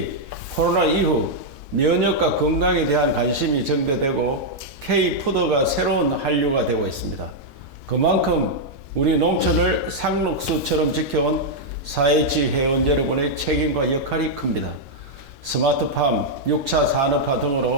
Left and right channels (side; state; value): left; late; 1.3 ms